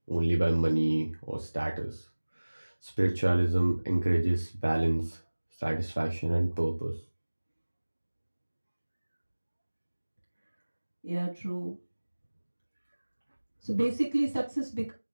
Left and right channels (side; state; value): both; inverted; correlation -1.00